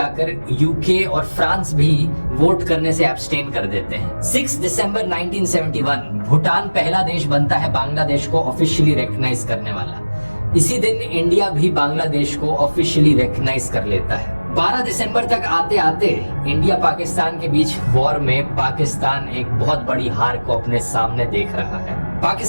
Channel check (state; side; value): inverted; both; correlation -1.00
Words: यूके और फ्रांस भी वोट करने से एब्सटेन कर देते हैं। 6 दिसंबर 1971 भूटान पहला देश बनता है बांग्लादेश को ऑफिशियली रिकॉग्नाइज करने वाला। इसी दिन इंडिया भी बांग्लादेश को ऑफिशियली रिकॉग्नाइज कर लेता है। 12 दिसंबर तक आते आते इंडिया पाकिस्तान के बीच वॉर में पाकिस्तान एक बहुत बड़ी हार को अपने सामने देख रहा है।